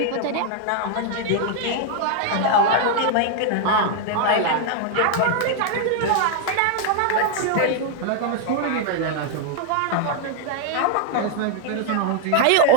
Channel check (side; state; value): both; different; correlation 0.00